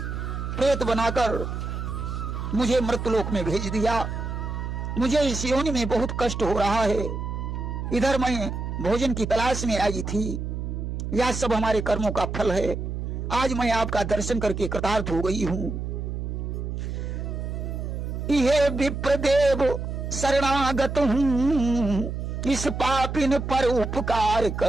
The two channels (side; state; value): right; noise; hum, 4 dB below the sound